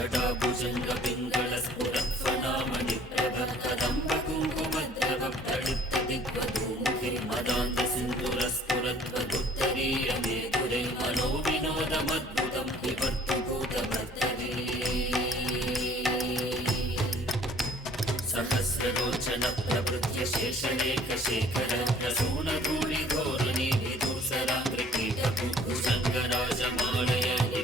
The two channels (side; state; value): both; normal; correlation 0.56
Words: प्रभकदम्बकुङ्कुमद्रवप्तडिप्तदिग्वधूमुखे मदान्तसिन्धुरस्फुरत्वदुत्तरीयमेधुरे मनो विनोदमद्भुतं विवर्तुभूतभर्तरे सहस्रलोचन प्रभृत्य शेषलेखशेखर प्रसूनधूलिधोरणी विदूसराङ्कृकीटकुभुजङ्गराजमालय